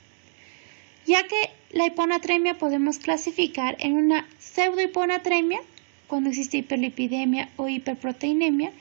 Ya que la hiponatremia podemos clasificar en una pseudohiponatremia, cuando existe hiperlipidemia o hiperproteinemia,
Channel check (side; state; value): left; silent; digital silence